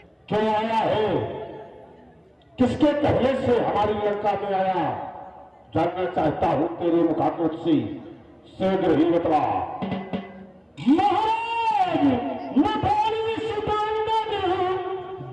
क्यों आया है, किसके कहने से हमारी लंका में आया, जानना चाहता हूं तेरे मुखाकृत से शीघ्र ही बतला। महाराज मैं बाली सुदानंद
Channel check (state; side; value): identical; both; correlation 1.00